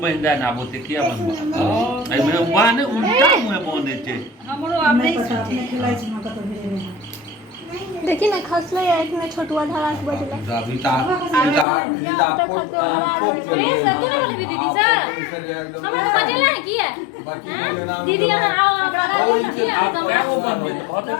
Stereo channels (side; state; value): right; drops out; at 11.7 s